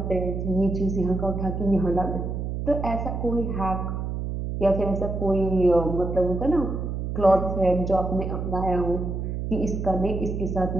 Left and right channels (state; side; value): noise; right; hum, 3 dB below the sound